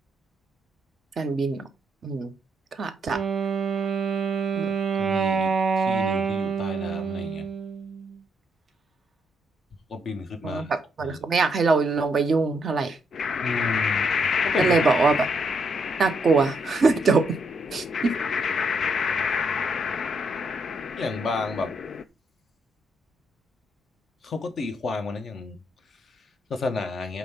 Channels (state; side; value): normal; both; correlation 0.75